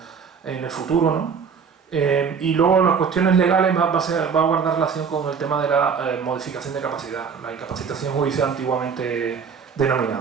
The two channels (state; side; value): quieter; left; 6.3 dB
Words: en el futuro, ¿no? Y luego las cuestiones legales va a guardar relación con el tema de la modificación de capacidad, la incapacitación judicial antiguamente